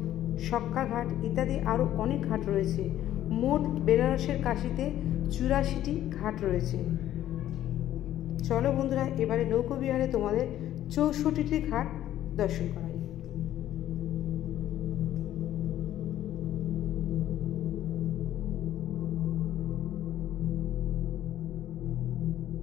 সক্কা ঘাট ইত্যাদি আরও অনেক ঘাট রয়েছে। মোট বেনারসের কাশিতে 84টি ঘাট রয়েছে। চলো বন্ধুরা, এবারে নৌকো বিহারে তোমাদের 64টি ঘাট দর্শন করাই।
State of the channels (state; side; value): quieter; right; 12.5 dB